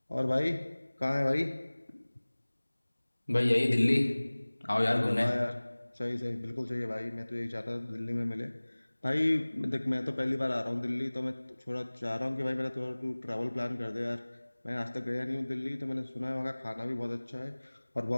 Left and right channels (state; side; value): inverted; both; correlation -1.00